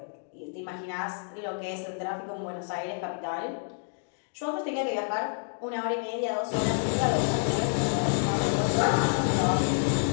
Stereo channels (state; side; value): silent; right; digital silence